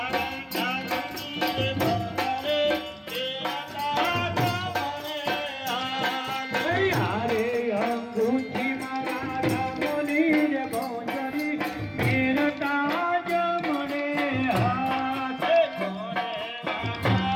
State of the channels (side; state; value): both; identical; correlation 1.00